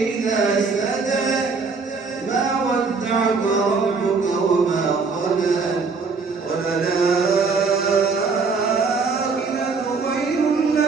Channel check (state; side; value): quieter; left; 4.6 dB